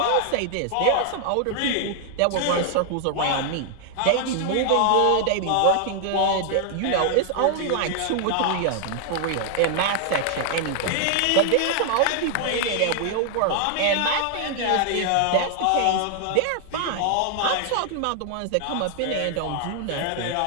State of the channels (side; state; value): both; different; correlation 0.00